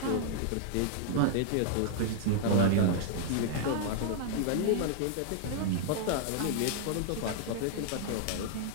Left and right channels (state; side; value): different; both; correlation 0.00